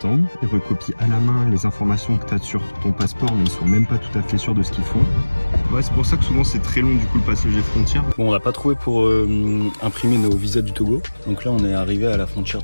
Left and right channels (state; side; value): inverted; both; correlation -1.00